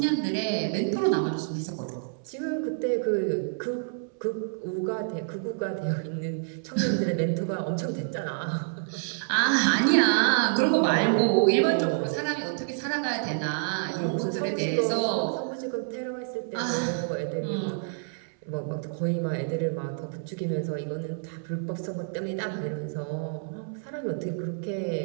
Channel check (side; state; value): left; silent; 59 dB below the other